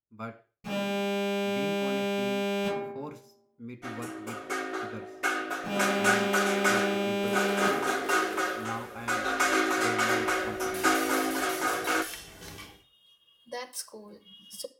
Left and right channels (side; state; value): both; identical; correlation 1.00